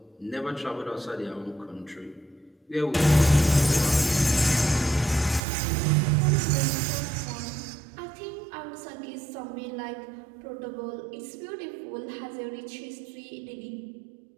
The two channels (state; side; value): drops out; left; at 5.4 s